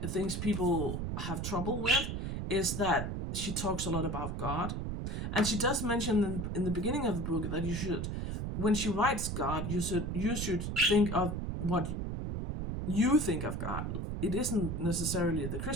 things people have trouble with is that she talks a lot about God. And she does mention in the beginning of the book that you should, when she writes God, you should think of what you think of God. It isn't necessarily the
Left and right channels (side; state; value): right; noise; rumble, 3 dB below the sound